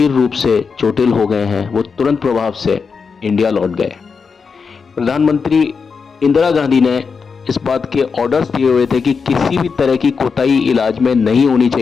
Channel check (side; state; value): right; quieter; 5.4 dB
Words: रूप से चोटिल हो गए हैं, वो तुरंत प्रभाव से इंडिया लौट गए। प्रधानमंत्री इंदिरा गांधी ने इस बात के ऑर्डर्स दिए हुए थे कि किसी भी तरह की कोताही इलाज में नहीं होनी